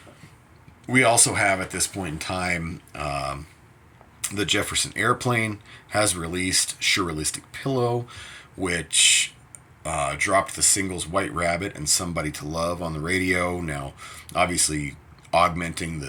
We also have, at this point in time, the Jefferson Airplane has released Surrealistic Pillow, which dropped the singles White Rabbit and Somebody to Love on the radio. Now, obviously, augmenting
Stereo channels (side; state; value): both; identical; correlation 1.00